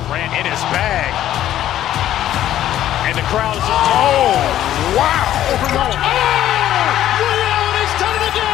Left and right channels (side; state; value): right; quieter; 12.3 dB